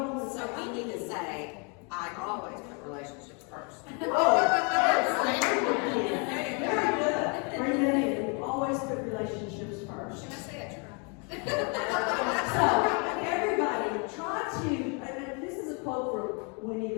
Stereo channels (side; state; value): right; quieter; 35.1 dB